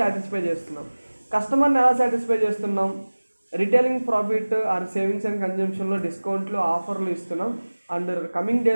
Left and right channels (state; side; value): inverted; both; correlation -1.00